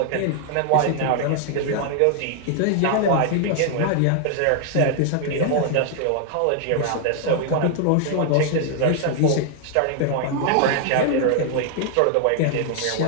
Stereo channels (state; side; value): different; both; correlation 0.00